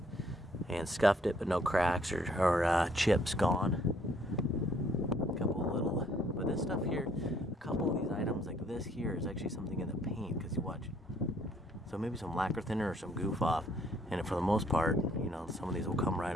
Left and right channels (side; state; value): both; normal; correlation 0.64